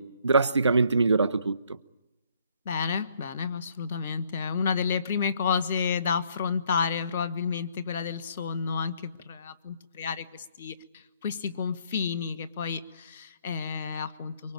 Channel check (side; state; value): both; inverted; correlation -0.66